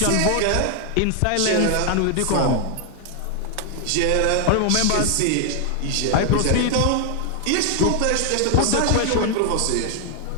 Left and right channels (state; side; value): different; both; correlation 0.00